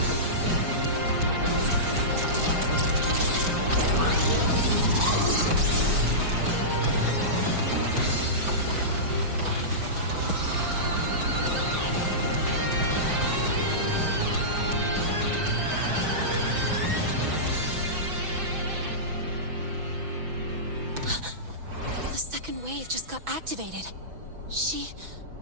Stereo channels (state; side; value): late; left; 6.1 ms